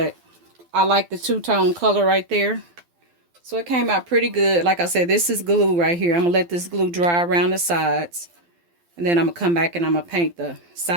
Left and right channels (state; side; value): late; left; 12 ms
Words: I like the two-tone color right there. So it came out pretty good. Like I said, this is glue right here. I'm going to let this glue dry around the sides. And then I'm going to come back and I'm going to paint the